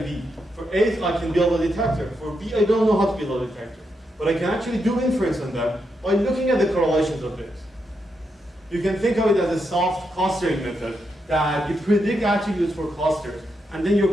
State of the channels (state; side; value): normal; both; correlation 0.83